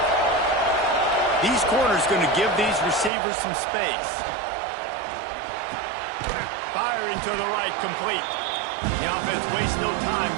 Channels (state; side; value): drops out; left; at 3.1 s